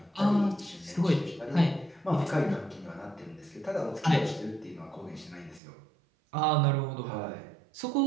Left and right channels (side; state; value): left; drops out; at 5.6 s